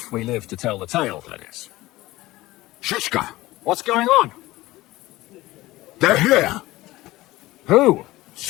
we live to tell the tale, that is. Shishka, What's going on? they're here. Who?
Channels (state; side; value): quieter; right; 18.2 dB